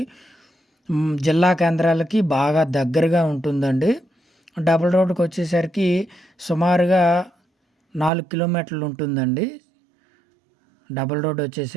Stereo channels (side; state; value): left; drops out; at 8.1 s